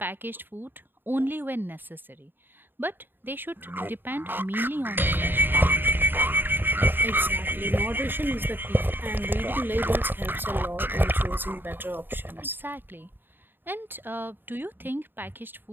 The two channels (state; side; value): late; left; 0.096 ms